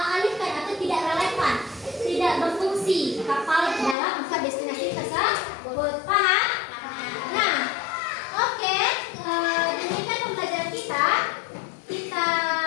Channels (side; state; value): right; drops out; at 4.0 s